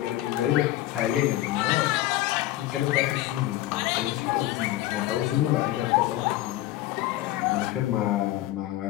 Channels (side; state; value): right; quieter; 15.3 dB